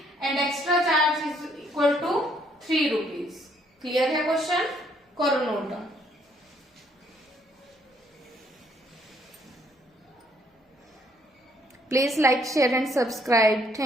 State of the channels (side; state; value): both; normal; correlation 0.67